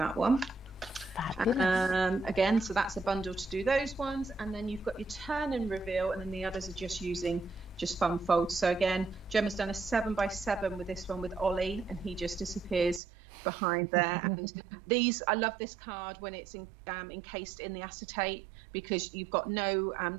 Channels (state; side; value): drops out; left; at 13.0 s